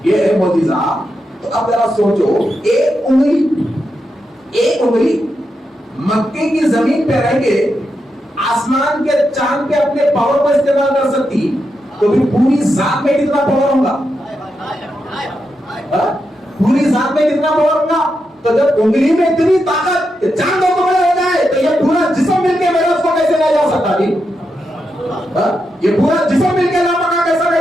یہ ہے معجزہ. تو اب ذرا سوچو, ایک انگلی مکے کی زمین پہ رہ کے آسمان کے چاند پہ اپنے پاور کو استعمال کر سکتی, تو بھی پوری ذات میں کتنا پاور ہوگا؟ پوری ذات میں کتنا پاور ہوگا؟ تو جب انگلی میں اتنی طاقت کہ چاند کو بڑا ہو جائے, تو یہ پورا جسم مل کے میرے اس کو کیسے لے جا سکتا جی؟ یہ پورا جسم مل کے لاپکا کیسے لے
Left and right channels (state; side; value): normal; both; correlation 0.85